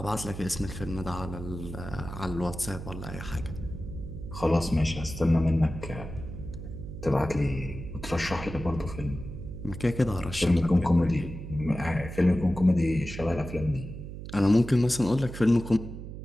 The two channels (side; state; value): right; noise; hum, 10 dB below the sound